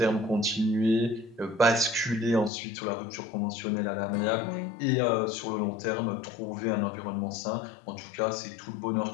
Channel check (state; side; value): drops out; right; at 2.5 s